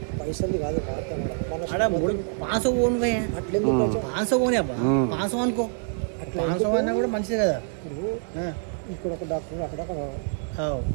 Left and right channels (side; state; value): left; silent; 61 dB below the other